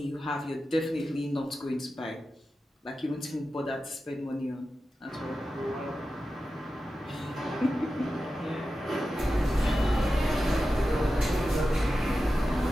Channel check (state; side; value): normal; both; correlation 0.92